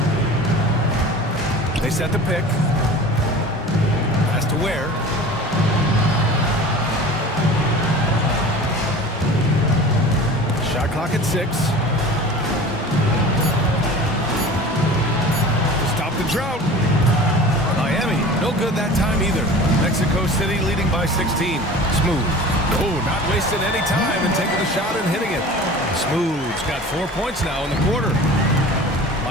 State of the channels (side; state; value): both; normal; correlation 0.39